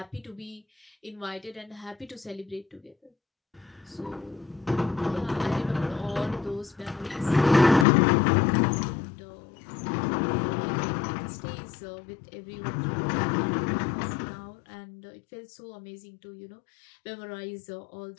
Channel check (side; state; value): right; drops out; at 7.9 s